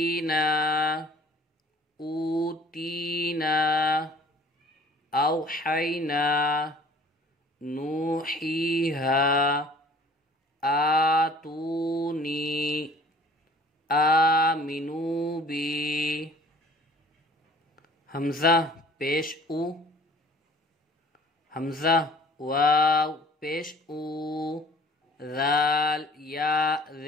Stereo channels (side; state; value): both; normal; correlation 0.51